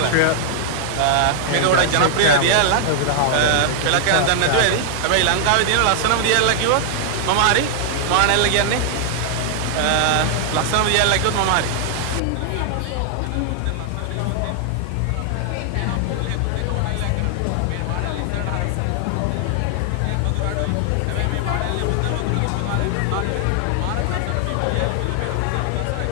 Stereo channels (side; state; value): both; different; correlation 0.00